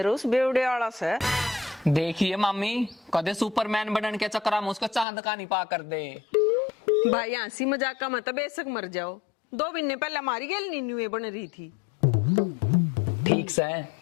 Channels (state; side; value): drops out; right; at 5.1 s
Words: उस बेवड़े आला से। देखिए मामी, कदे सुपरमैन बनने के चक्कर में उसको चांद का नहीं पा कर दे। भाई हंसी मजाक का मतलब बेशक मर जाओ, 2 महीने पहले हमारी गेल नीनुए बन रही थी। ठीक से